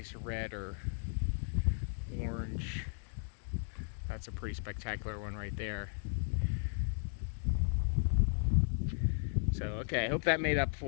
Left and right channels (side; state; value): right; silent; digital silence